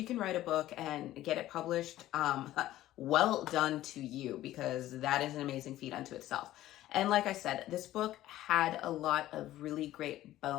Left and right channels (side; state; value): right; quieter; 14.5 dB